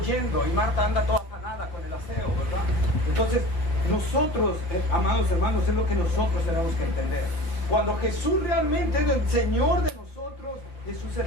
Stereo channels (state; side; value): late; right; 5.4 ms